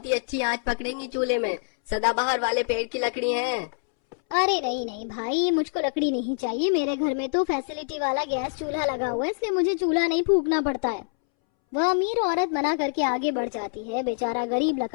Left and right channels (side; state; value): right; silent; 61 dB below the other